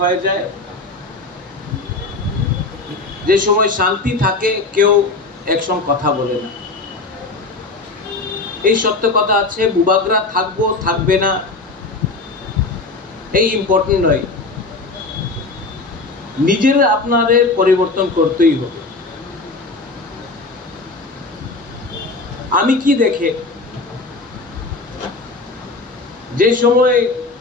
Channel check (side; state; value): right; quieter; 3.4 dB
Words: হয়ে যায়। যে সময় শান্তি থাকে কেউ একসঙ্গে কথা বলে না। এই সত্য কথা আছে, বুবাগরা থাকবো থাকবে না এই ইম্পর্টেন্ট নয়। নিজেরা আপনাদের পরিবর্তন করতেই হবে। আমি কি দেখে যে সময়